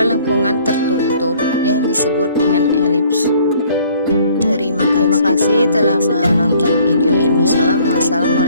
lengkungan tertutup yang disebut dengan elips. Terima kasih telah menonton video ini.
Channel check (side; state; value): both; inverted; correlation -0.59